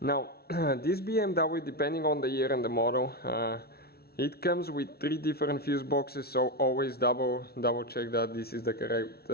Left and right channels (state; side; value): late; right; 0.45 ms